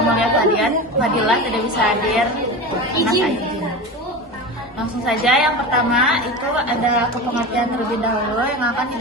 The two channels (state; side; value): normal; both; correlation 0.27